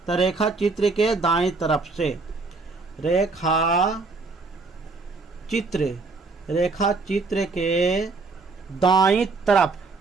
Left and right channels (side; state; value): left; quieter; 3.9 dB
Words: तो रेखा चित्र के दाएं तरफ से, रेखा चित्र के दाईं तरफ,